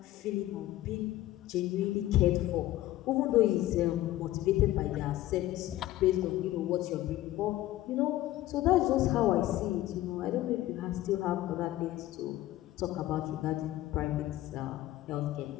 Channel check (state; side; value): quieter; right; 15.3 dB